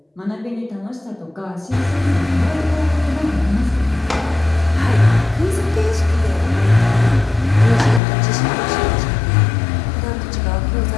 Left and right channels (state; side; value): drops out; right; at 8.0 s